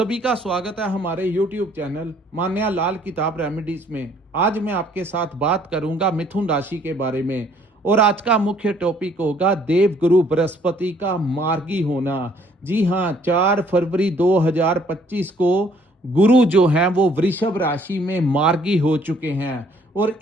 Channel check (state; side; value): normal; both; correlation 0.62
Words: का स्वागत है हमारे YouTube चैनल मान्या लाल किताब रेमेडीज में। आज मैं आपके साथ बात करूंगा मिथुन राशि के बारे में और आज का मुख्य टॉपिक होगा देवगुरु बृहस्पति का मार्गी होना। जी हाँ, 4 फरवरी 2025 को गुरु जो हैं वो वृषभ राशि में मार्गी हो चुके हैं और